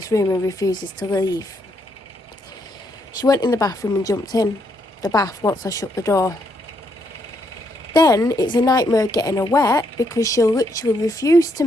room and refuses to leave. She went in the bathroom and jumped in the bath once I shut the door. Then it's a nightmare getting her wet because she'll literally refuse to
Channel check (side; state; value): both; normal; correlation 0.75